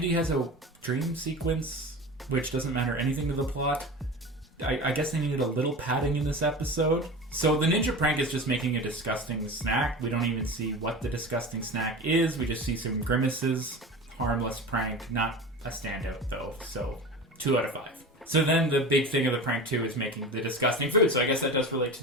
has a dream sequence, which doesn't matter anything to the plot. I guess they needed a little padding in this episode. So the ninja prank is just making a disgusting snack. We don't even see what the disgusting snack is. We just see some grimaces. Harmless prank, not a standout though. So 2 out of 5. So then the big thing of the prank too is making the disgusting food. So I guess that does relate to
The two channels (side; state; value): both; normal; correlation 0.31